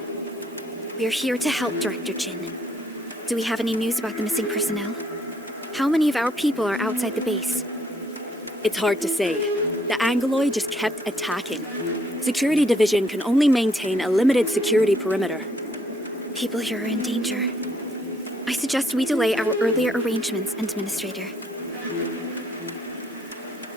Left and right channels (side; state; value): both; normal; correlation 0.68